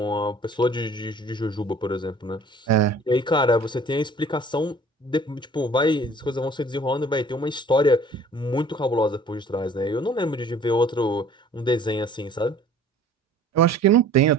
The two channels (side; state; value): both; normal; correlation 0.51